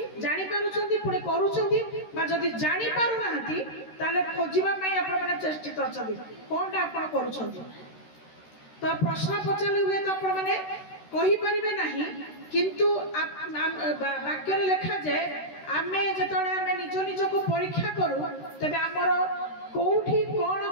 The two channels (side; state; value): right; late; 13 ms